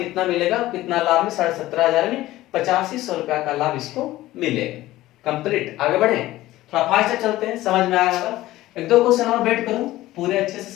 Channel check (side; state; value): right; quieter; 16.3 dB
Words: मिलेगा, कितना लाभ में 17,500 में 8500 रुपया का लाभ इसको मिलेगा। कंप्लीट, आगे बढ़े, थोड़ा फास्ट चलते हैं, समझ में आया होगा। एक दो क्वेश्चन और वेट करो, पूरे अच्छे से